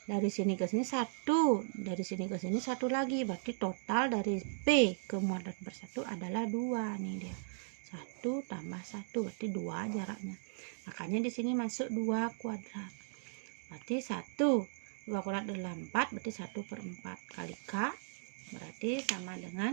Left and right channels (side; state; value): left; silent; digital silence